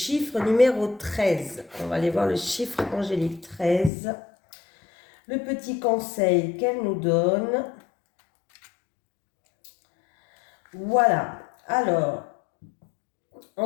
numéro 13. On va aller voir le chiffre angélique 13. Le petit conseil qu'elle nous donne. Voilà, alors,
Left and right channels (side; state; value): right; drops out; at 3.9 s